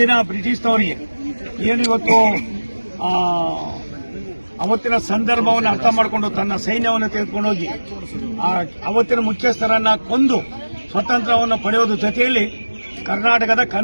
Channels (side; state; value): both; inverted; correlation -1.00